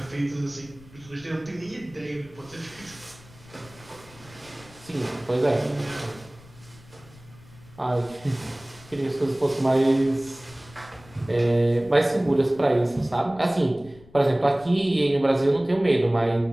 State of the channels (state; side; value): noise; left; rumble, 23 dB below the sound